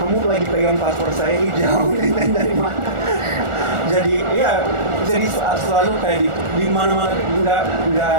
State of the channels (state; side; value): late; left; 1.4 ms